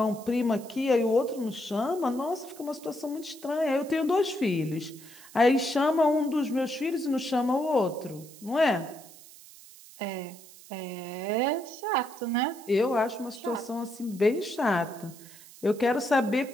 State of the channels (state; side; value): noise; right; hiss, 20 dB below the sound